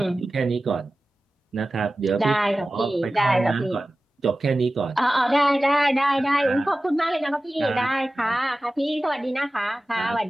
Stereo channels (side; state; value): both; normal; correlation 0.96